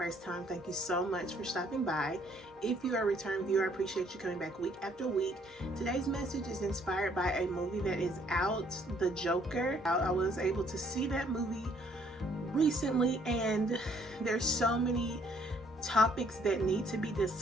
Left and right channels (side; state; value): both; normal; correlation 0.64